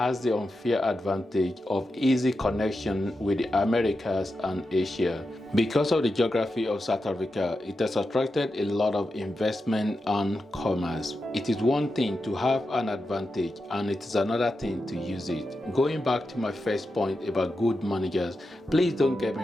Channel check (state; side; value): normal; both; correlation 0.89